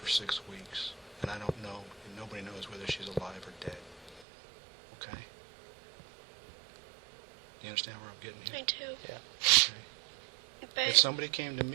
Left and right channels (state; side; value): drops out; left; at 4.2 s